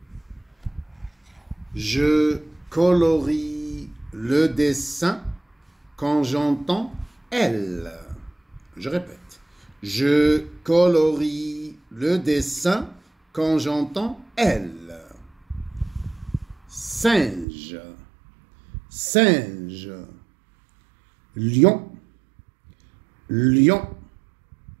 Je colorie le dessin quand j'entends elle. Je répète. Je colorie le dessin quand j'entends elle. Singe. Singe. Lion. Lion.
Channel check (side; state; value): left; drops out; at 17.4 s